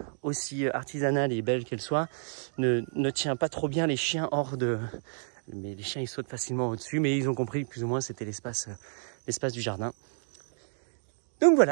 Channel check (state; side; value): silent; left; 58 dB below the other